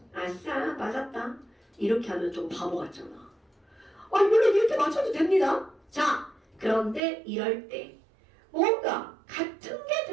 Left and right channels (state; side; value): drops out; left; at 7.0 s